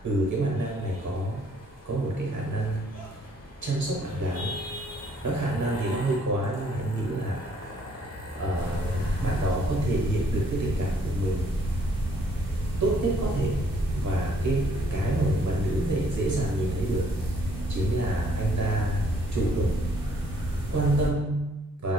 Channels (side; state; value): both; normal; correlation 0.65